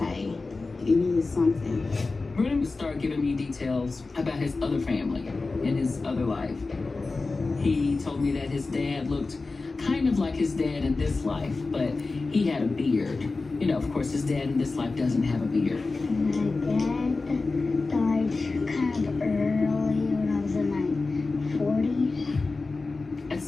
it is something. Brennan would start giving me details about his other family and his other life. He told me that his dad looked kind of like his dad in this life, but he had a beard. You know, of course, his dad in this life doesn't have a beard. My dad died kind of early when I was in my 40s. At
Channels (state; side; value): quieter; right; 3.7 dB